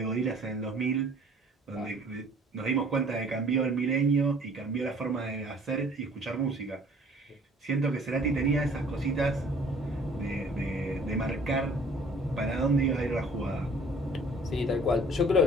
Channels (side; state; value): both; normal; correlation 0.53